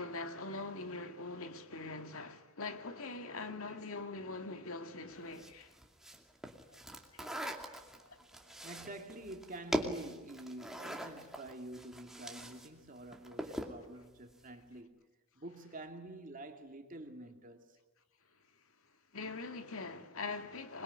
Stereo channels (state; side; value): normal; both; correlation 0.31